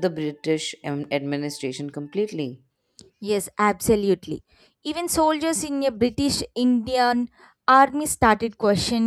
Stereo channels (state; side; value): identical; both; correlation 1.00